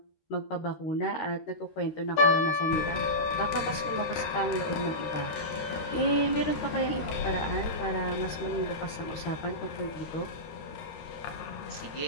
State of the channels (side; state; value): right; late; 13 ms